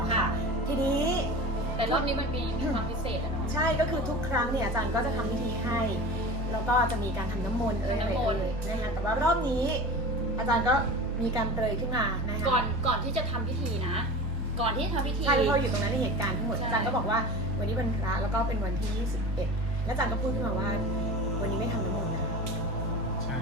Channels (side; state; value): both; normal; correlation 0.33